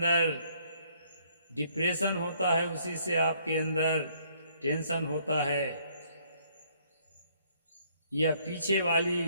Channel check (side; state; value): both; inverted; correlation -0.65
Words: डिप्रेशन होता है, उसी से आपके अंदर टेंशन होता है, या पीछे